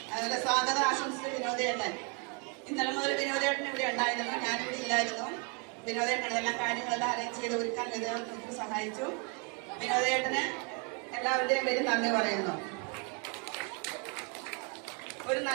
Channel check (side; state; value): left; quieter; 35.7 dB